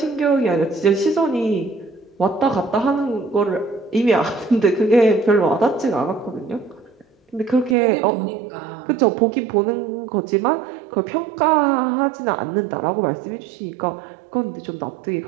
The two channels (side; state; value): left; drops out; at 7.8 s